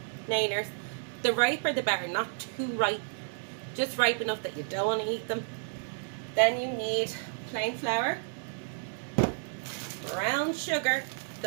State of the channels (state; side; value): silent; left; digital silence